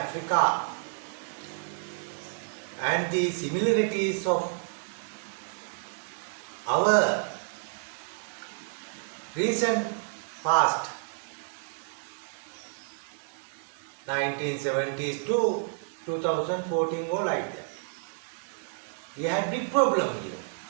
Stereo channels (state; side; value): silent; left; 55 dB below the other